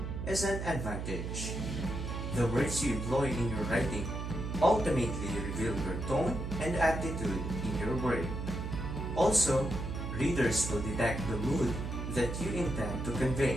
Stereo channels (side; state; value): right; noise; hum, 5 dB below the sound